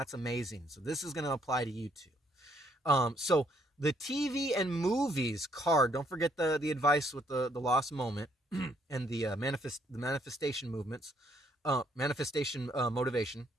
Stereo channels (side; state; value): both; normal; correlation 0.69